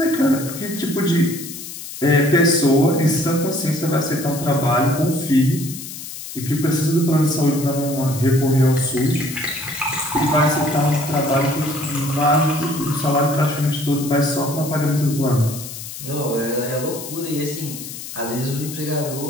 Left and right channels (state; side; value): noise; left; hiss, 11 dB below the sound